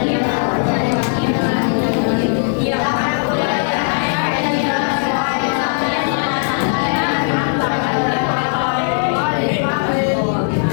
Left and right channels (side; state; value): right; silent; 58 dB below the other